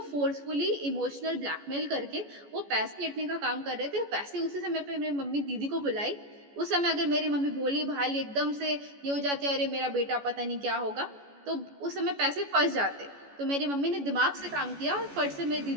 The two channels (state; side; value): late; left; 14 ms